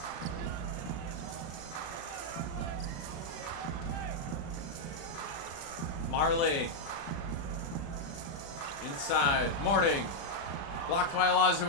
Marley. Inside. Mourning. Blocked by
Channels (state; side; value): late; right; 36 ms